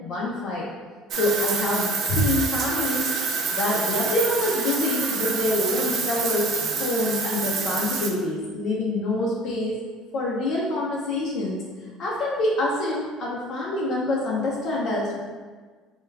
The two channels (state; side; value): normal; both; correlation 0.47